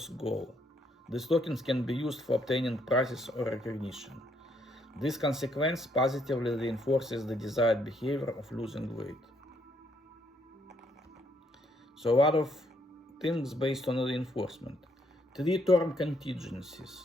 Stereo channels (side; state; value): both; normal; correlation 0.72